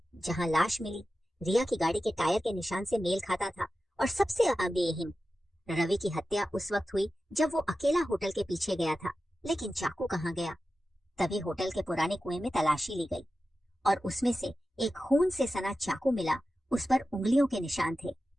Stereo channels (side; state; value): both; normal; correlation 0.93